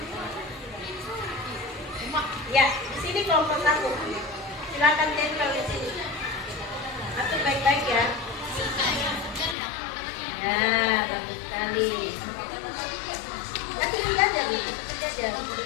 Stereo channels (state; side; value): drops out; right; at 9.6 s